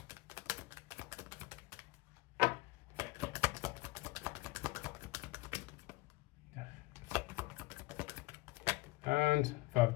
And Five of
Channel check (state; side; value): quieter; right; 21.5 dB